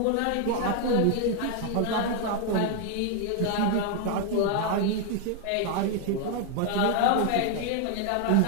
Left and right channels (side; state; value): both; different; correlation 0.00